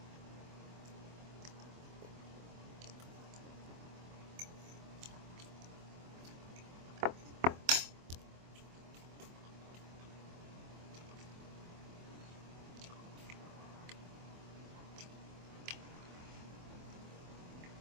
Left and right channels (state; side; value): late; left; 24 ms